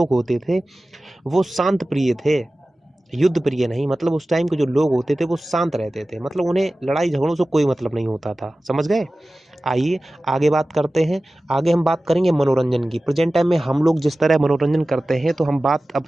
होते थे वो शांत प्रिय थे, युद्ध प्रिय नहीं। मतलब उस टाइम के जो लोग होते थे वो शांत रहते थे, मतलब उन्हें लड़ाई झगड़ों से कोई मतलब नहीं होता था, समझ गए। आइए आगे बात करते हैं। आगे हम बात करेंगे मनोरंजन की। प्रेजेंट टाइम में हम लोग जिस तरह मनोरंजन करते हैं, तो हम बात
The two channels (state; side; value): normal; both; correlation 0.96